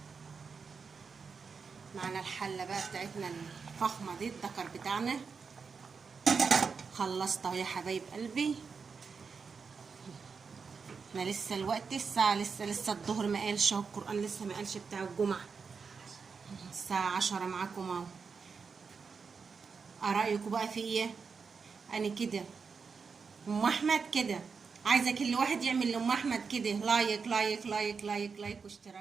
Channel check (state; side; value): quieter; left; 5.4 dB